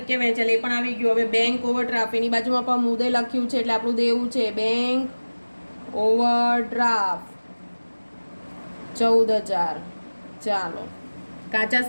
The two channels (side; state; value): both; inverted; correlation -1.00